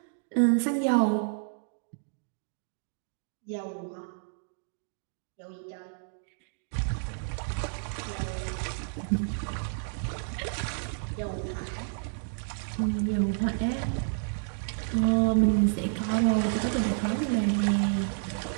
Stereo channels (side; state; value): left; silent; digital silence